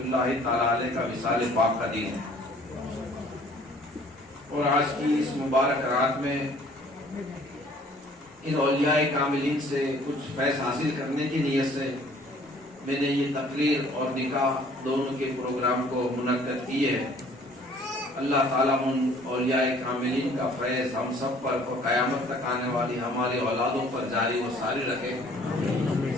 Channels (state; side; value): normal; both; correlation 0.55